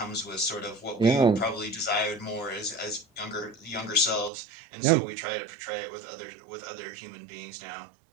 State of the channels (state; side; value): drops out; left; at 4.3 s